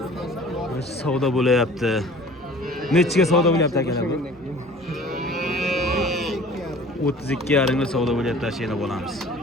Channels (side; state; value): both; normal; correlation 0.46